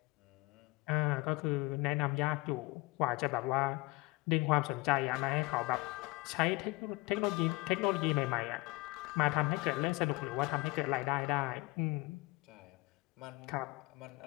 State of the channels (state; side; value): quieter; right; 22.0 dB